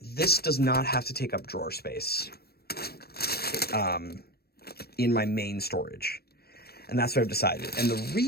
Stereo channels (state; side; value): late; right; 0.46 ms